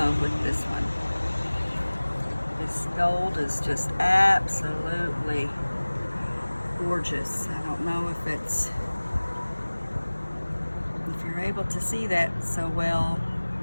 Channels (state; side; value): inverted; both; correlation -1.00